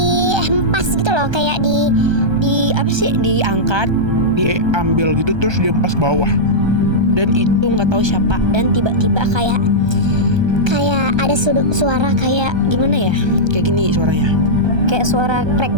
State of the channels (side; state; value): left; late; 1.3 ms